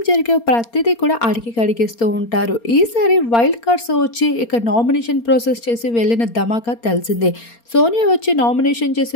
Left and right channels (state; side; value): late; right; 4.3 ms